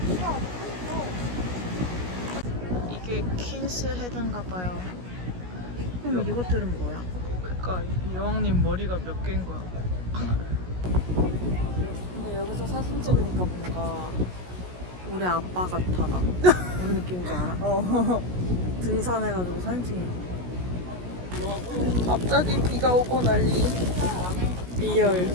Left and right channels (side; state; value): left; late; 17 ms